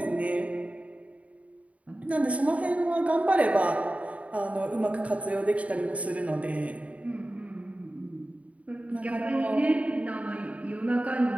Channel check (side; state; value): left; late; 0.067 ms